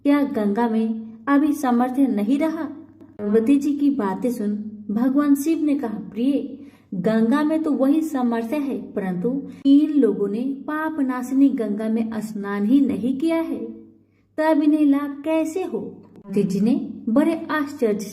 गंगा में अभी सामर्थ्य नहीं रहा? पार्वती जी की बातें सुन भगवान शिव ने कहा, प्रिय, गंगा में तो वही सामर्थ्य है, परंतु इन लोगों ने पाप नाशिनी गंगा में स्नान ही नहीं किया है, तब इन्हें लाभ कैसे हो? पार्वती जी ने बड़े आश्चर्य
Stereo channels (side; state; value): both; identical; correlation 1.00